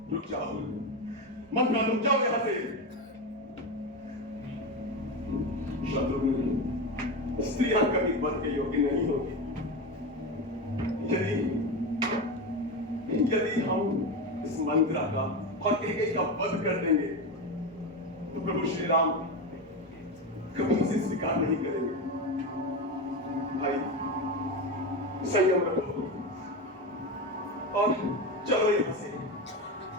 रुक जाओ। मंत्रा, रुक जाओ यहाँ से। शत्रुघ्न, स्त्रियां कभी वध के योग्य नहीं होगी। यदि हम इस मंत्रा का और कैकेयी का वध कर देंगे तो प्रभु श्री राम कभी इसे स्वीकार नहीं करेंगे। भाई, संयम रखो और चलो यहाँ से।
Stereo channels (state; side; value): normal; both; correlation 0.18